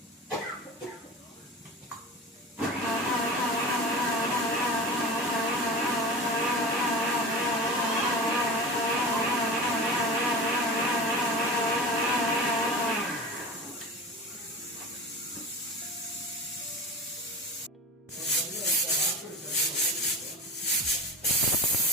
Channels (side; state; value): both; normal; correlation 0.31